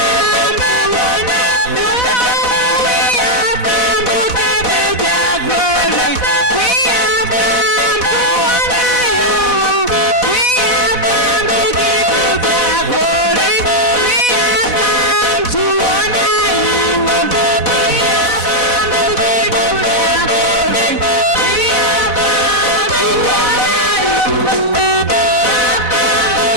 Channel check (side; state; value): right; late; 4.0 ms